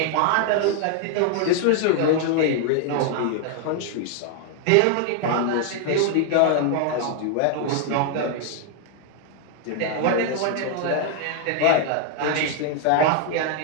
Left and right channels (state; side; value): different; both; correlation 0.00